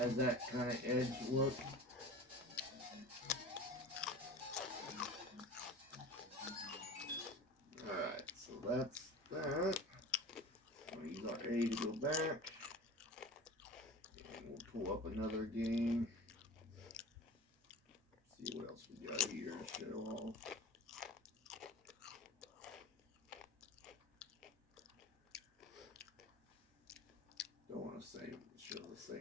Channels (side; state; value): both; normal; correlation 0.36